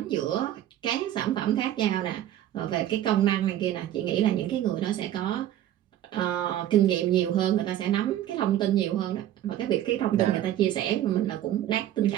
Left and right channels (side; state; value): left; quieter; 12.3 dB